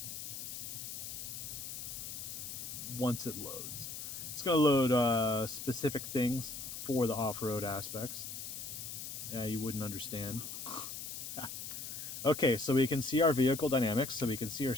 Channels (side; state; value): left; noise; hiss, 7 dB below the sound